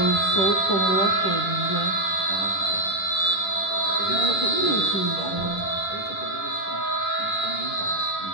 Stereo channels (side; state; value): right; late; 10 ms